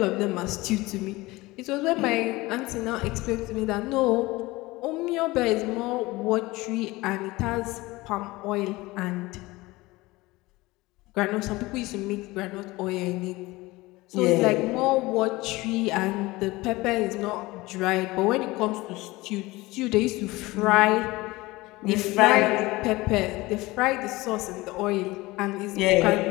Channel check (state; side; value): quieter; right; 20.7 dB